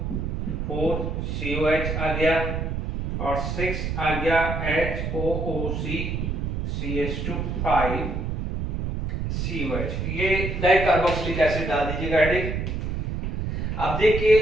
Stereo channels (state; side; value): noise; right; rumble, 2 dB below the sound